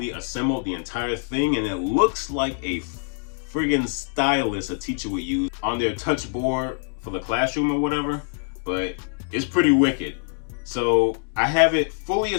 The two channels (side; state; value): right; silent; 62 dB below the other